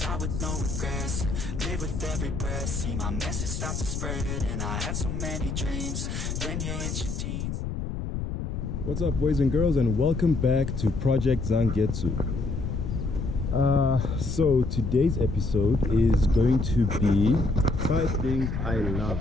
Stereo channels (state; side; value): noise; left; rumble, 4 dB below the sound